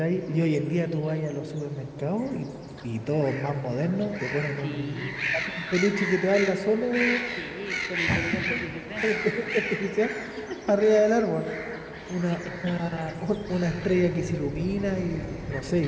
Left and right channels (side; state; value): both; identical; correlation 1.00